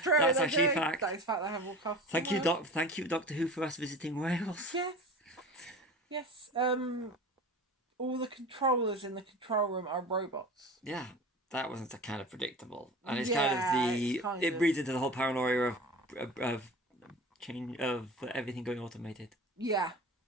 That's actually a fact. That is fact. They have more castles. Thank you, Doctor Who, for us visiting Wales. Yes. All the controllers in the control room are robots. Yeah, that wasn't kind of predictable, and it's it breeds into the whole paranoia of change of everything going automated. Yeah.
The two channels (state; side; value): normal; both; correlation 0.35